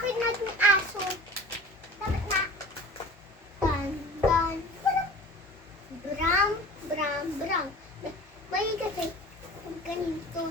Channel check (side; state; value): both; normal; correlation 0.40